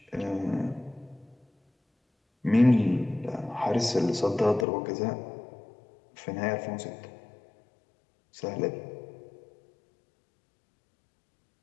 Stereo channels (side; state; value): right; drops out; at 4.7 s